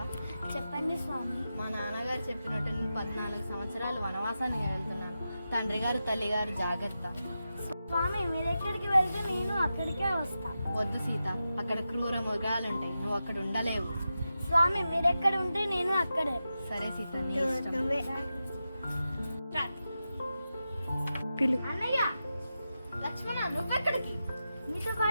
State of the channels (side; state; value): both; inverted; correlation -0.91